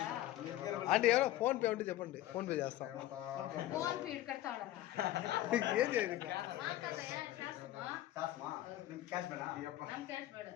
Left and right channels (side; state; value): right; quieter; 14.7 dB